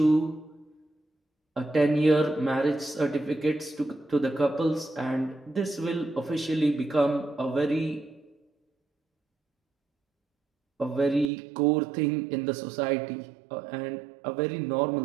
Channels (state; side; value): drops out; left; at 11.3 s